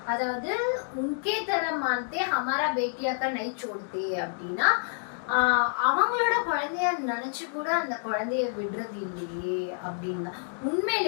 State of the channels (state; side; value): silent; right; digital silence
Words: அதாவது உன்கே தர மான்தே ஹமாரா பேட்டியாக்கா நை சோடுதே அப்படின்னா அவங்களோட குழந்தைய நினைச்சு கூட அந்த குழந்தைய விடுறது இல்லையே அப்படின்னா